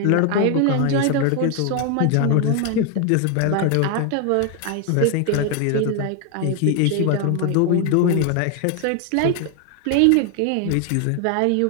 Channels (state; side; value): different; both; correlation 0.01